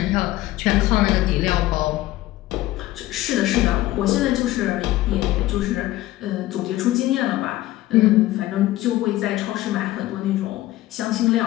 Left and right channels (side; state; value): right; quieter; 16.2 dB